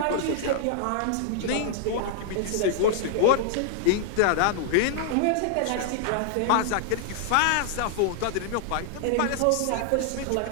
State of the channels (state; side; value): different; both; correlation -0.01